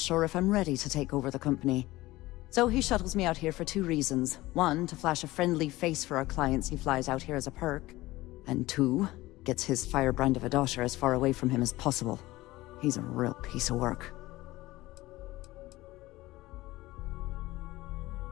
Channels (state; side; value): quieter; right; 18.4 dB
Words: if I'm ready to take over the company. So he shuttles me out here for two reasons. One, to flash a friendly face for our clients he flies out here as a perk. And two, gets his firebrand of a daughter as far away from him as possible. He's a real piece of work.